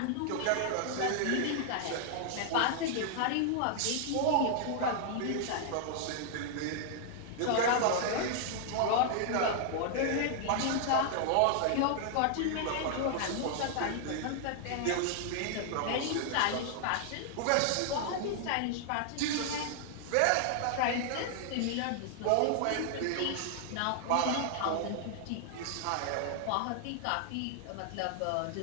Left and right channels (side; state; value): both; different; correlation 0.00